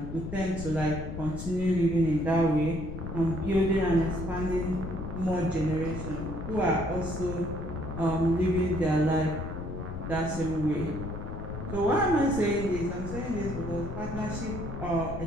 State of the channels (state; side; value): noise; left; rumble, 7 dB below the sound